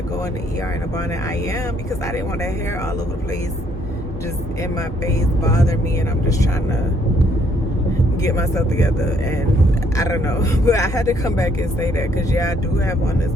go in the ER in a bonnet. I am, because I didn't want that hair all over the place, just in my face, bother me, and I'm just trying to get myself together. And I don't know, but I had to come back and say that, because yeah, I do have on this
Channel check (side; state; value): both; normal; correlation 0.68